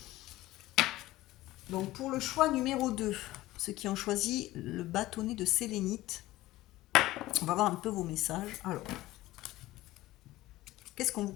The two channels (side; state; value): right; quieter; 17.0 dB